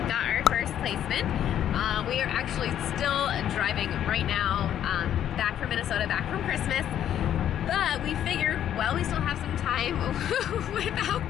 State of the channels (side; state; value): right; quieter; 10.5 dB